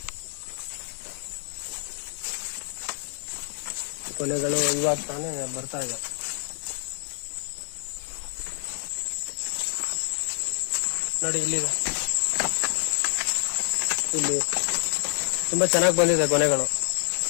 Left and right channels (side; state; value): right; silent; digital silence